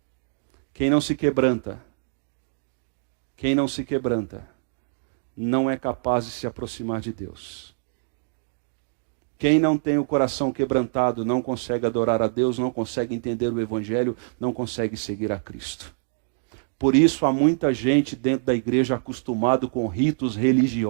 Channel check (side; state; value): left; silent; digital silence